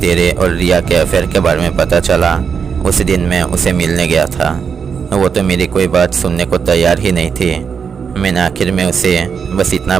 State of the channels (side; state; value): left; quieter; 6.5 dB